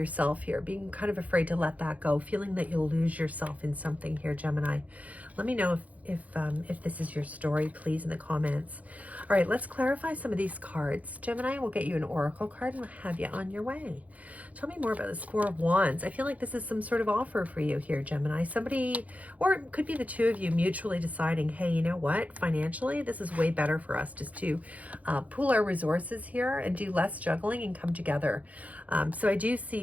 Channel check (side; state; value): left; late; 0.071 ms